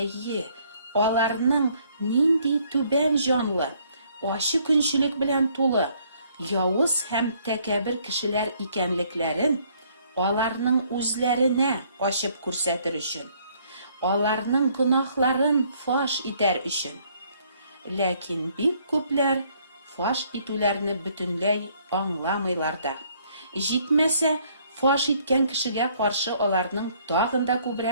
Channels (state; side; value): inverted; both; correlation -0.65